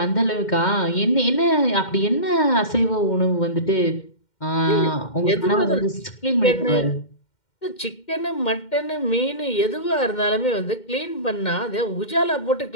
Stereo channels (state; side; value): late; right; 2.1 ms